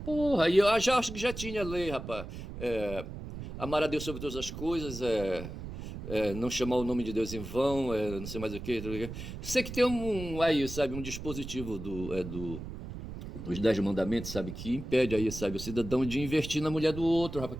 Porra, e eu já acho que já tinha lei, rapaz. Amar a Deus sobre todas as coisas, não chamar o nome de Deus em vão, não sei mais o que. Sei que tem aí, sabe? Um dispositivo dos 10 mandamentos, sabe, que impede aí, sabe, o cidadão de investir na mulher do outro, rapaz,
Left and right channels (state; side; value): noise; right; rumble, 9 dB below the sound